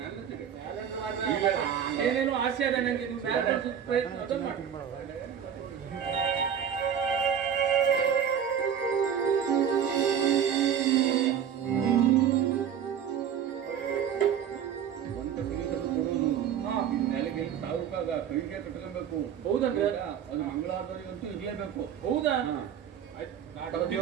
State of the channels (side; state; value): left; quieter; 8.6 dB